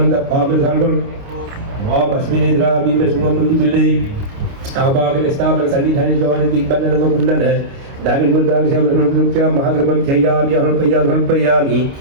పాప సర్వం వామస్మినేద్రా బిమ్మ సుమముది పిల్లై ఆభాగన స్థాపన సన్నిధాన జవాన దిగ్బంధన కుండన దాని ముద్రాల సేవనుక్ష మహాగ్రమం చయామి హల్పయామి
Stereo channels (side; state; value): left; late; 29 ms